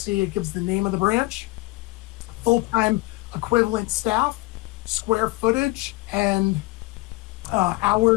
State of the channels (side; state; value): right; quieter; 22.2 dB